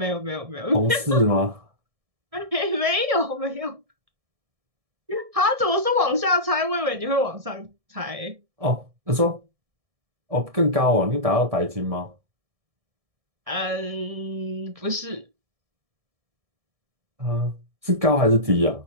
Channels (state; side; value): late; left; 1.7 ms